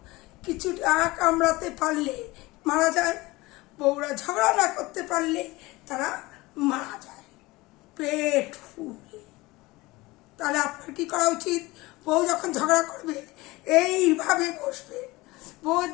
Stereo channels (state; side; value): quieter; right; 21.2 dB